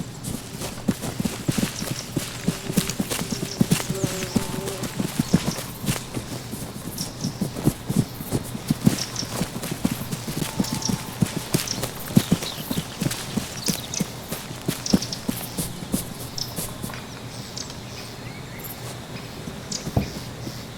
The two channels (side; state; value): both; identical; correlation 1.00